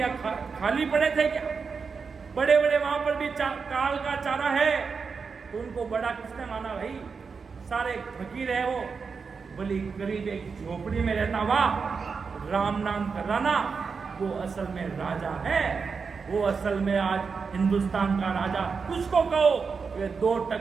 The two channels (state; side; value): quieter; left; 5.3 dB